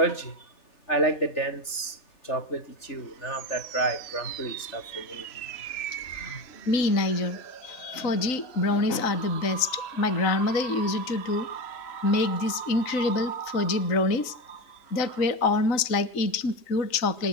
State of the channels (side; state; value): right; late; 3.9 ms